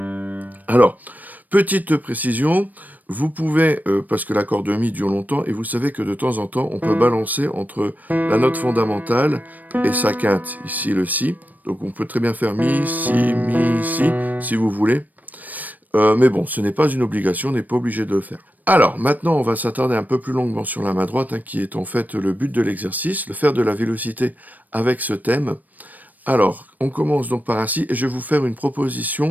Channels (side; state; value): left; late; 0.082 ms